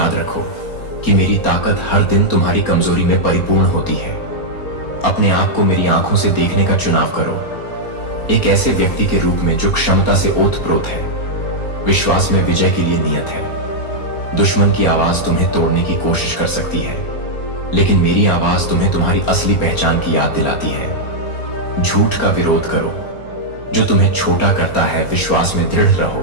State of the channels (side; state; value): right; late; 4.3 ms